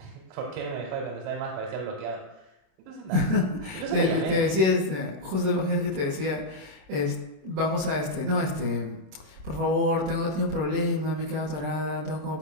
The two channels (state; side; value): late; left; 26 ms